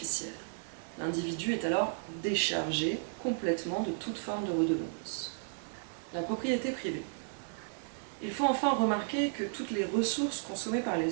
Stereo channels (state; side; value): silent; left; digital silence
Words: L'individu est alors déchargé complètement de toute forme de redevance. La propriété privée. Il faut enfin remarquer que toutes les ressources consommées par